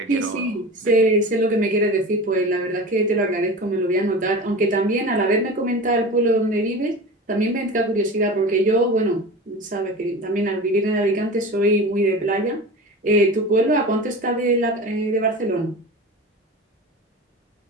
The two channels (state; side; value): normal; both; correlation 0.32